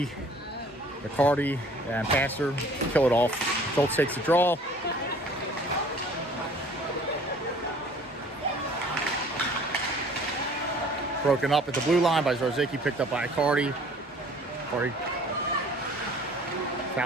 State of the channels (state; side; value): normal; both; correlation 0.52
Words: McCarty, and Passer kill it off. Schultz takes the draw. Broken up at the blue line by Zarzicki, picked up by Cardi. Cardi